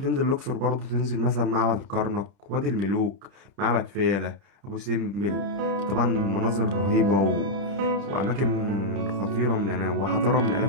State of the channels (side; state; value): left; late; 30 ms